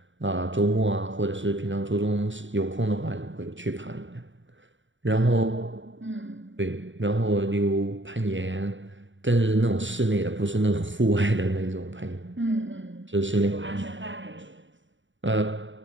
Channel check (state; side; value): late; left; 0.55 ms